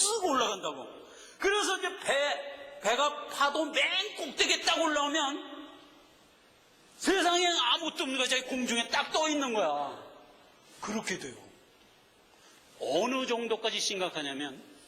올라간다고. 그래서 이제 배가 파도 맨 꼭대기에 딱 올라오면 세상에 아무것도 없는 거야. 자기 공중에 딱 떠 있는 거야. 그렇게 돼요. 어느 정도까지 심각하냐면,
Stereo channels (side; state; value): both; identical; correlation 1.00